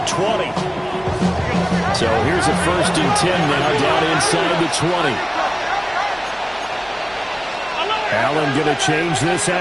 20. So here's a 1st and 10 now down inside the 20. Allen going to change this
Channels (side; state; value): left; noise; hum, 27 dB below the sound